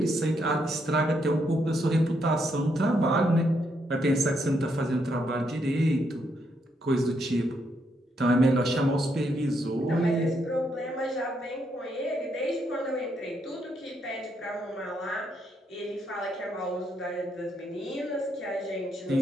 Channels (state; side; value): normal; both; correlation 0.77